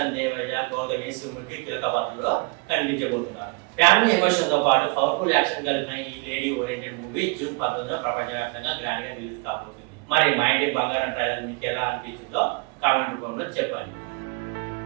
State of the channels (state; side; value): quieter; left; 30.6 dB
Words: దేవయ్య, గౌతమి, సుముఖి కీలక పాత్రలో కనిపించబోతున్నారు. ఫ్యామిలీ ఎమోషన్ తో పాటు పవర్ఫుల్ యాక్షన్ కలిపిన ఈ లేడీ ఓరియంటెడ్ మూవీ జూన్ 19 ప్రపంచవ్యాప్తంగా గ్రాండ్ గా రిలీజ్ కాబోతుంది. మరి మా ఇంటి బంగారం ట్రైలర్ మీకు ఎలా అనిపించిందో కామెంట్ రూపంలో చెప్పండి.